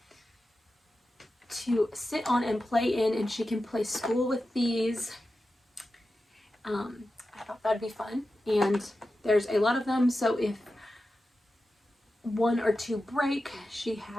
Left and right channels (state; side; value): normal; both; correlation 0.92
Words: to sit on and play in, and she can play school with these. I thought that'd be fun, and there's a lot of them, so if one or two break, she